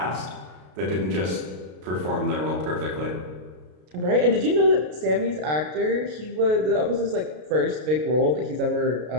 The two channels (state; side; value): late; left; 33 ms